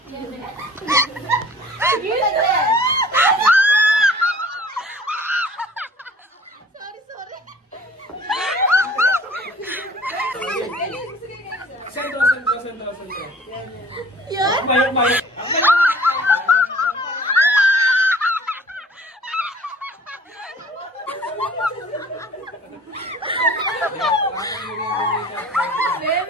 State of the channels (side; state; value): both; normal; correlation 0.49